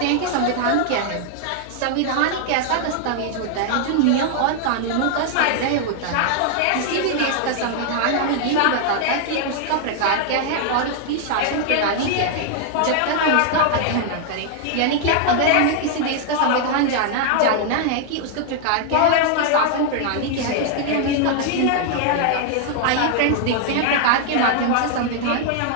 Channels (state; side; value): different; both; correlation 0.00